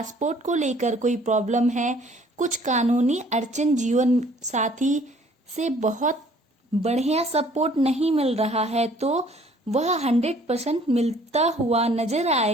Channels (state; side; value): normal; both; correlation 0.57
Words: को लेकर कोई प्रॉब्लम है, कुछ कानूनी अड़चन, जीवन साथी से बहुत बढ़िया सपोर्ट नहीं मिल रहा है, तो वह 100% मिलता हुआ नजर